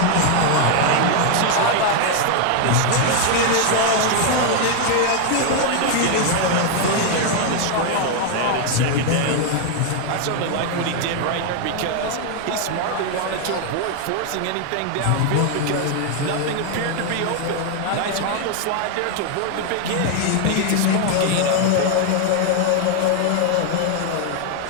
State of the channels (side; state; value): both; different; correlation 0.00